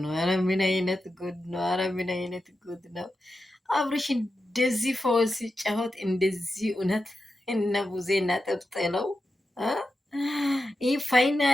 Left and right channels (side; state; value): both; normal; correlation 0.90